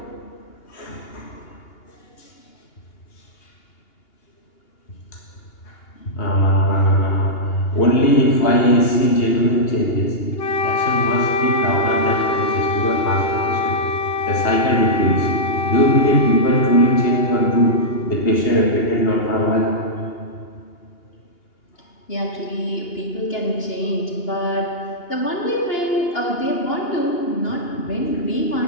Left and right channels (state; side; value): late; right; 2.8 ms